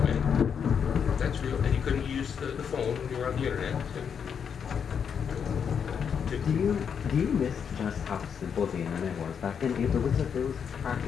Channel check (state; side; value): quieter; right; 7.2 dB